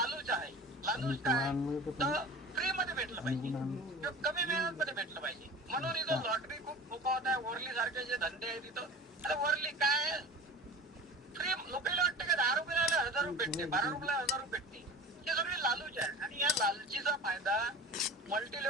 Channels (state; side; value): normal; both; correlation 0.38